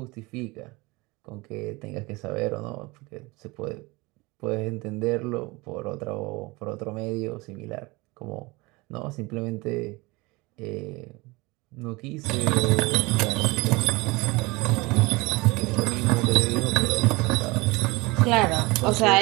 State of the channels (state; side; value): quieter; left; 23.8 dB